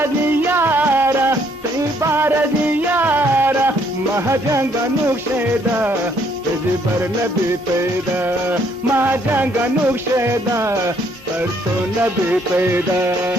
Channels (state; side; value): normal; both; correlation 0.67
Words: baradiyara, mahajanga nuksheda, bar nabi peda, mahajanga nuksheda, parto nabi peda.